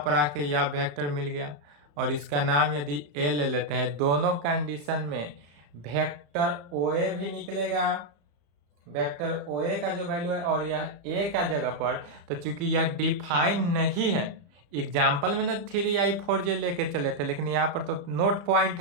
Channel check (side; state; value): left; late; 34 ms